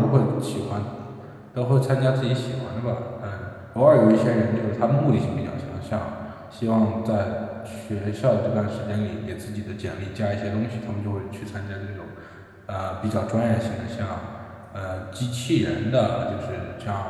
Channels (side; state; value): both; identical; correlation 1.00